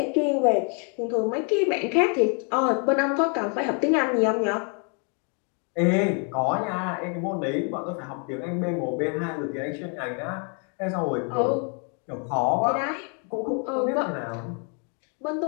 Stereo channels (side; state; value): right; quieter; 39.1 dB